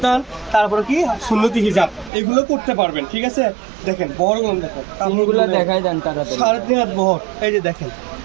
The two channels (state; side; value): drops out; left; at 2.1 s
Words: তারপরে কি সুন্নতি হিজাব, এগুলো করতে পারবেন। ঠিক আছে, দেখেন বড়গুলো দেখেন, কাপড়গুলো দেখাই দেন তাড়াতাড়ি। 3.5 বহর। এই যে দেখেন